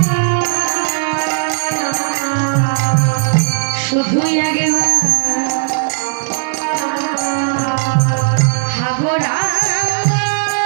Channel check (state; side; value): silent; left; digital silence